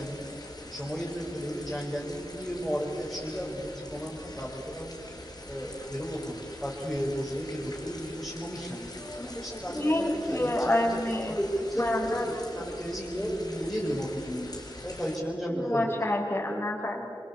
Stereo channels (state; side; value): normal; both; correlation 0.89